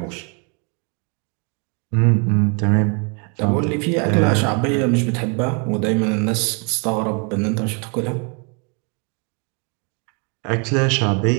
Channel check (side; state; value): left; quieter; 35.4 dB